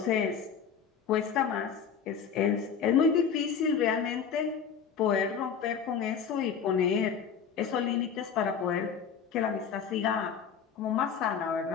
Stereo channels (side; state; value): right; quieter; 7.0 dB